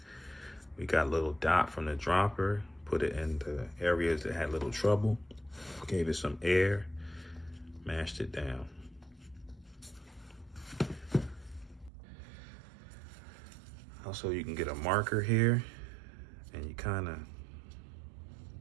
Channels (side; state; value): left; drops out; at 11.9 s